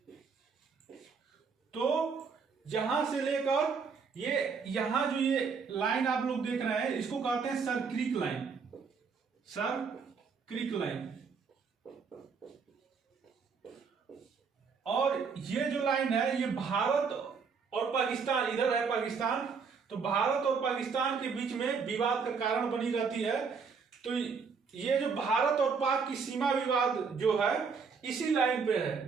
तो जहां से लेकर ये यहां जो ये लाइन आप लोग देख रहे हैं, इसको कहते हैं sir creek line, sir creek line. और ये जो लाइन है, ये भारत और पाकिस्तान, इधर है पाकिस्तान, तो भारत और पाकिस्तान के बीच में विवाद का कारण बनी रहती है। तो ये जो भारत और पाक की सीमा विवाद जो है, इसी लाइन पे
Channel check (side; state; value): left; quieter; 5.5 dB